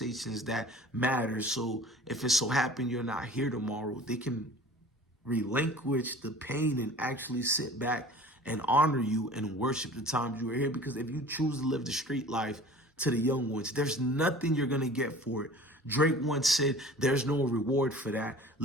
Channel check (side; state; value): both; normal; correlation 0.44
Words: that matter. So if it so happen you're not here tomorrow, they can relinquish the pain and actually sit back and honor you and worship the times you were here. Because if you choose to live the street life to the young ones, there's nothing you're going to get for it. Drake once said, there's no reward for that.